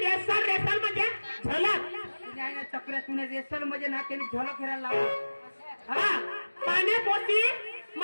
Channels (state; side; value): inverted; both; correlation -1.00